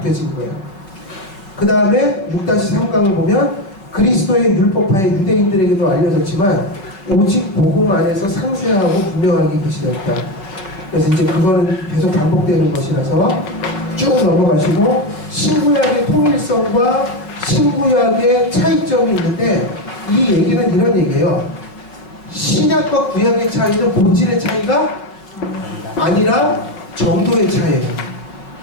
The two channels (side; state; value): right; late; 5.3 ms